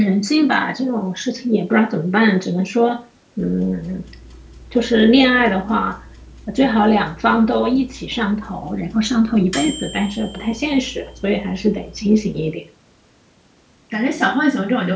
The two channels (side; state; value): both; identical; correlation 1.00